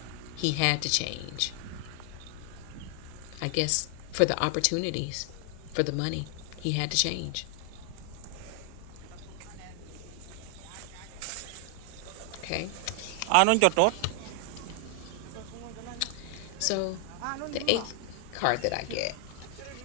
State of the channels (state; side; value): different; both; correlation 0.00